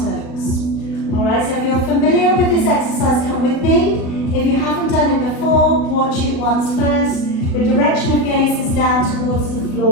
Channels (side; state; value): right; late; 37 ms